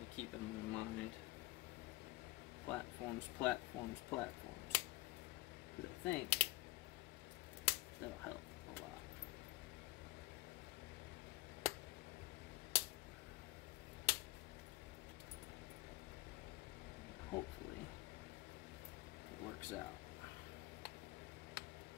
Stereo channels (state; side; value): quieter; right; 18.9 dB